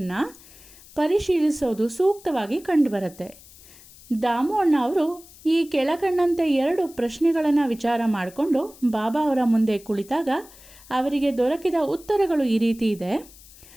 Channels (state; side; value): noise; left; hiss, 22 dB below the sound